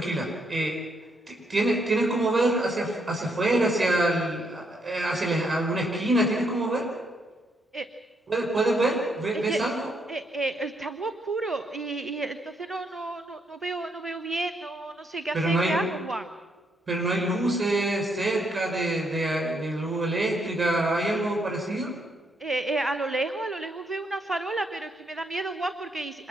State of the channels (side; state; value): both; normal; correlation 0.75